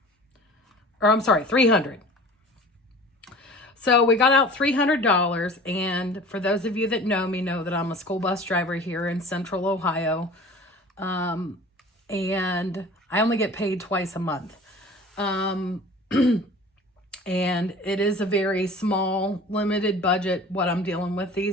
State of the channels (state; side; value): normal; both; correlation 0.42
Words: Or I'm sorry, $300. So we got out $300, and for those of you that know me know that I'm a school bus driver here in Central Ohio, and I only get paid twice a month. And it is a very small, limited budget, what I'm dealing with